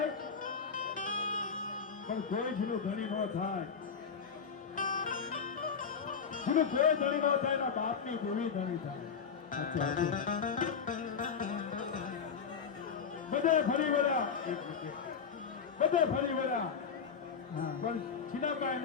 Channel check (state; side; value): quieter; right; 6.3 dB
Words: પણ કોઈ જેનું ધણી ન થાય, જેનું કોઈ ધણી ન થાય એના બાપની દેવી ધણી થાય. બધે ફરી વળ્યા, બધે ફરી વળ્યા પણ છીનાબાઈ